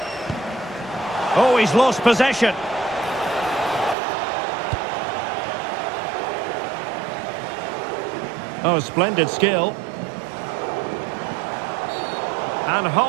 Oh, he's lost possession. Oh, splendid skill. And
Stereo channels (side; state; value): left; drops out; at 4.0 s